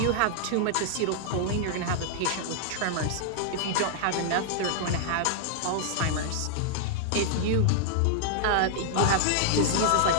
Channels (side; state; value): both; different; correlation -0.01